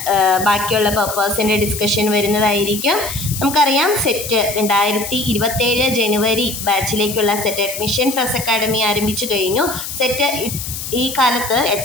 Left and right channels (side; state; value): left; noise; hiss, 7 dB below the sound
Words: ബാക്കിയുള്ള പേപ്പേഴ്സിൻ്റെ ഡിസ്കഷൻ വരുന്നതായിരിക്കും. നമുക്കറിയാം സെറ്റ് 2027 ജനുവരി ബാച്ചിലേക്കുള്ള സെറ്റ് അഡ്മിഷൻ ട്രസ് അക്കാഡമി ആരംഭിച്ചു കഴിഞ്ഞു. സെറ്റ് ഈ കാലത്ത്